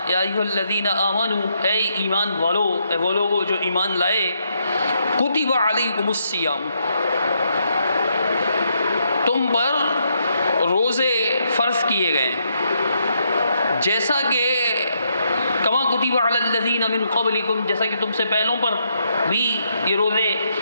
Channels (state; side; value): inverted; both; correlation -0.77